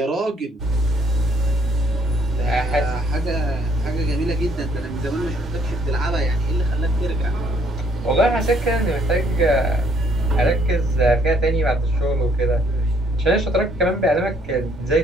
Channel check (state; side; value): normal; both; correlation 0.66